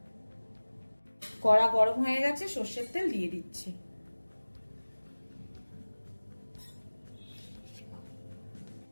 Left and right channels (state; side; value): inverted; both; correlation -1.00